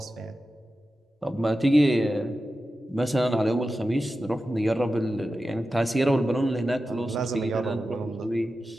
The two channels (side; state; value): both; normal; correlation 0.92